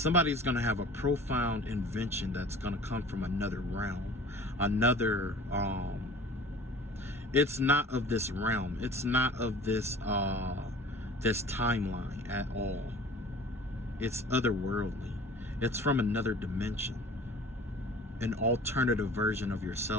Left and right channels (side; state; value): both; normal; correlation 0.43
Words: going to have a profound invention that's going to come from another realm. Another, it's not of this realm. It's not of this, this timeline at all. It's otherworldly. It's from another dimension. An alternative version of